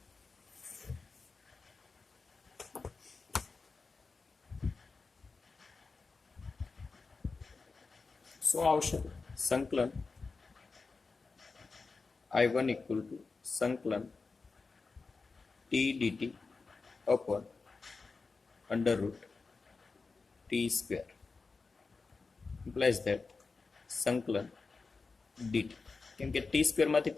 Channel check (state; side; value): quieter; right; 4.3 dB